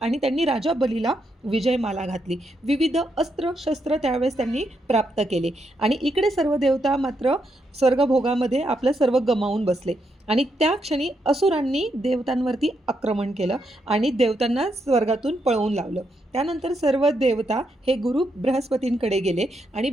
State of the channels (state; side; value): normal; both; correlation 0.80